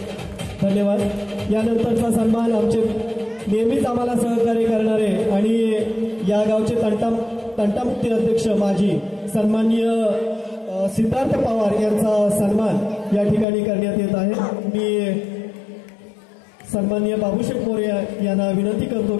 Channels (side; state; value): right; drops out; at 13.5 s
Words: धन्यवाद। यानंतरचा सन्मान आमचे नेहमीच आम्हाला सहकार्य करणारे आणि या गावचे तंटामुक्ती अध्यक्ष माजी सन्माननीय सिद्धार्थ पवार यांचा सन्मान या ठिकाणी करण्यात येत आहे। मी सन्माननीय बाबूशेठ मोरे यांना विनंती करतो